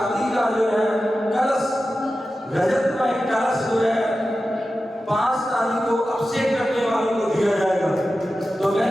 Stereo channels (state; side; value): normal; both; correlation 0.93